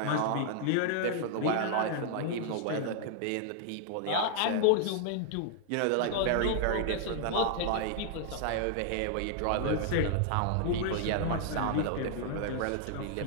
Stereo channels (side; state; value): both; different; correlation 0.00